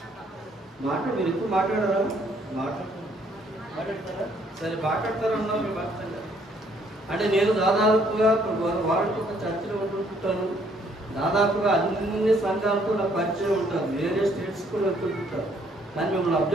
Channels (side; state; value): both; normal; correlation 0.66